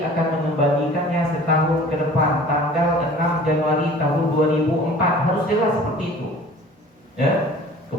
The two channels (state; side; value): normal; both; correlation 0.46